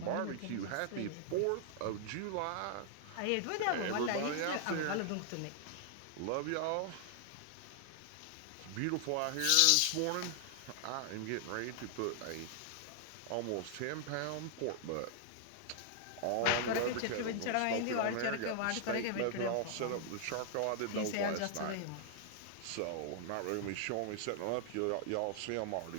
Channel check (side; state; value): both; different; correlation 0.00